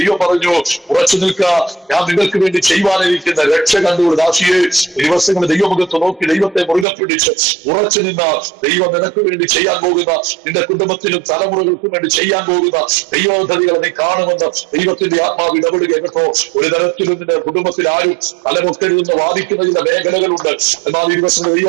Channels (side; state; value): left; drops out; at 6.9 s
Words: പറഞ്ഞു, ഉറച്ചു നിൽക്കുക, ഞാൻ നിങ്ങൾക്ക് വേണ്ടി ചെയ്യുവാനിരിക്കുന്ന രക്ഷ കണ്ടുകൊണ്ട് ദാസിയെ ദിവസങ്ങൾ ദൈവമുഖത്ത് നോക്കി ദൈവത്തെ മുറുകെ പിടിച്ച് ഉറച്ചു നിന്ന ദൈവം നിനക്ക് വേണ്ടി ചെയ്യാൻ പോകുന്ന നിന്റെ കുടുംബത്തിനും തലമുറകൾക്കും വേണ്ടി ചെയ്യാൻ പോകുന്ന ദൈവപദ്ധതികളെ നീ കാണുമെന്ന് ദൈവത്തിന്റെ ആത്മാവ് ഇടപെടുക കേട്ടോ. ഒരു തരത്തിലും നിന്റെ കുടുംബത്തിൽ ആരും തലമുക്കരുതെന്ന് വാദിക്കുന്ന ചില മേഖലകളുണ്ട്. എന്നാൽ ഈ ദിവസം